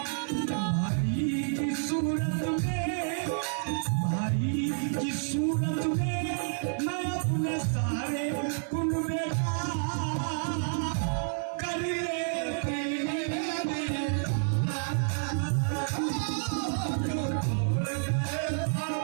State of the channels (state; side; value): silent; left; 58 dB below the other